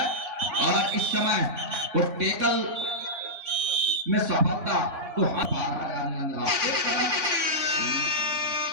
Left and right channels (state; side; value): late; left; 3.6 ms